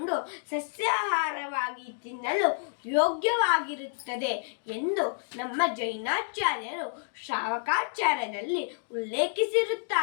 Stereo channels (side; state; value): right; silent; digital silence